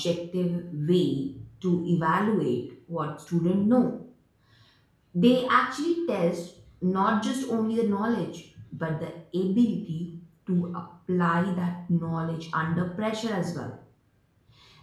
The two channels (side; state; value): both; identical; correlation 1.00